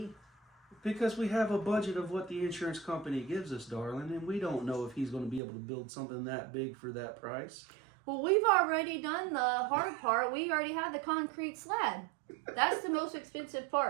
Because we have a budget of what the insurance company gives us, darling, and we don't know if he's going to be able to build something that big for that price. Well, we've already done the hard part. We already have the concrete slab. That's the most expensive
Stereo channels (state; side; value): drops out; left; at 5.4 s